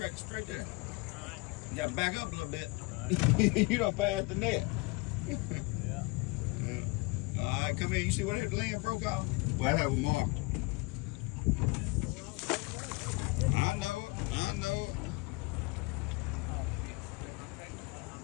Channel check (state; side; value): quieter; right; 26.5 dB